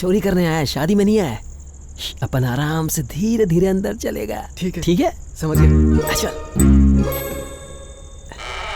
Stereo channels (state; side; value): identical; both; correlation 1.00